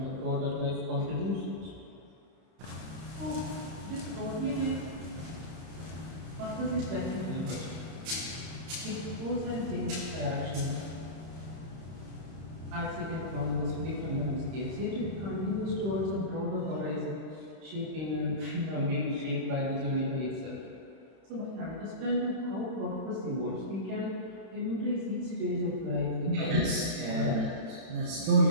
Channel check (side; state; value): left; late; 31 ms